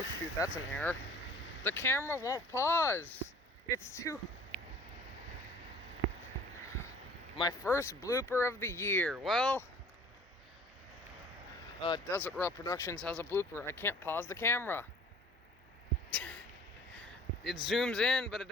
shoot, that's an error. The camera won't pause. It's too... My first blooper of the year. Well, Desert Raw Productions has a blooper. I can't pause the camera. It zooms in, but it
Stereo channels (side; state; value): both; normal; correlation 0.49